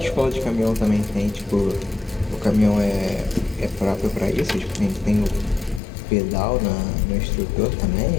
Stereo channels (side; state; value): right; drops out; at 5.8 s